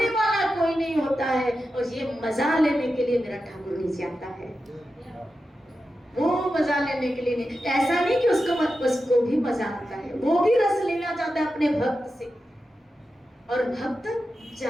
वाला कोई नहीं होता है। और ये मजा लेने के लिए मेरा ठाकुर नीचे आता है, वो मजा लेने के लिए नहीं, ऐसा नहीं कि उसको भी मजा आता है, वो भी रस लेना चाहता है अपने भक्त से। और भक्त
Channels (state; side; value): normal; both; correlation 0.91